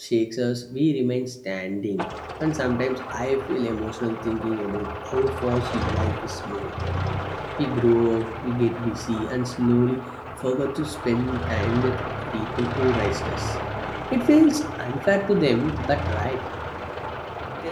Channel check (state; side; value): identical; both; correlation 1.00